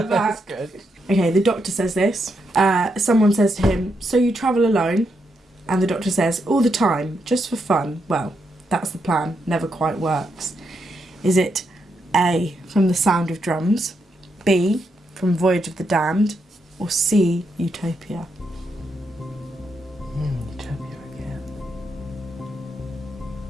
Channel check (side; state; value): both; normal; correlation 0.81